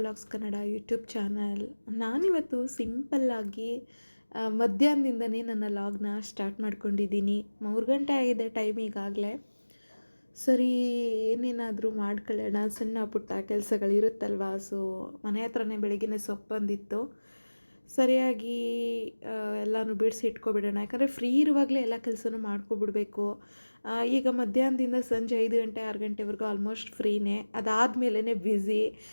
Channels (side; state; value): both; inverted; correlation -1.00